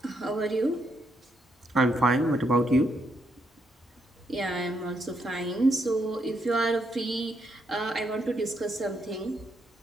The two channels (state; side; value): normal; both; correlation 0.77